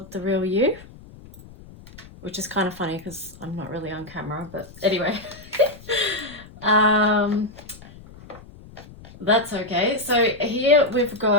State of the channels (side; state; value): left; noise; rumble, 20 dB below the sound